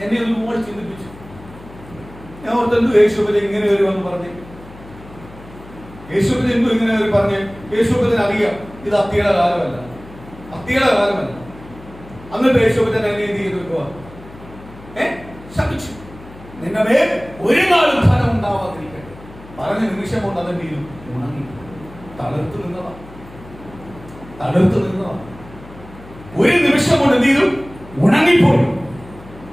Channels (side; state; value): left; noise; hum, 19 dB below the sound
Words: എന്നെ ഒരുപാട് ചിന്തിപ്പിച്ചു. ഞാൻ ഓർത്തെന്തു യേശുവിനെ ഇങ്ങനെ വരുമെന്ന് പറഞ്ഞു. യേശുവിനെ എന്തു ഇങ്ങനെ പറഞ്ഞ്? യേശുവിനെ അറിയാം ഇത് അത്തിയുടെ കാലമല്ല, അത്തിയുടെ കാലമല്ല. എന്നിട്ട് യേശുവിനെ എന്നെ എന്ത് ചെയ്ത് വെക്കുക? ശപിച്ചു. നിന്റെ മേൽ ഒരു നാളും ഫലം ഉണ്ടാവാതിരിക്കട്ടെ പറഞ്ഞ നിമിഷം കൊണ്ട് അതെന്ത് ചെയ്തു? ഉണങ്ങി, തളർത്തു നിന്നതാ, തളർത്തു നിന്നതാ. ഒരു നിമിഷം കൊണ്ട് എന്ത് ചെയ്തു? ഉണങ്ങിപ്പോയി.